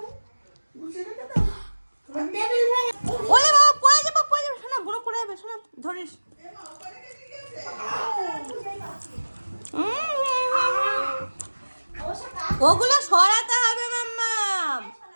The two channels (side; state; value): both; inverted; correlation -1.00